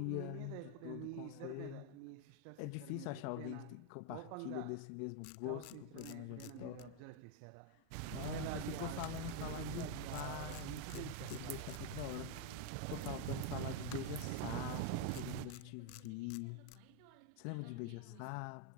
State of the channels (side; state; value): both; different; correlation 0.01